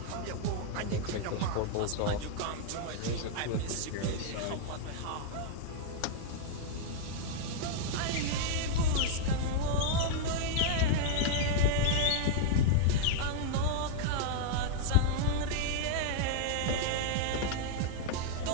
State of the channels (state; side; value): different; both; correlation -0.01